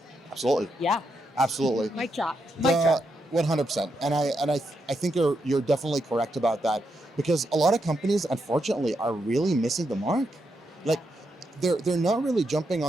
Absolutely. Yeah. Absolutely. Mic drop. 100%. And I think you're definitely correct about that, because a lot of companies, unfortunately, are really missing the mark. Like they're not really jumping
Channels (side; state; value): both; normal; correlation 0.82